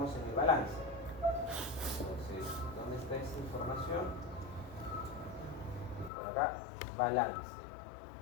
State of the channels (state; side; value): drops out; right; at 6.1 s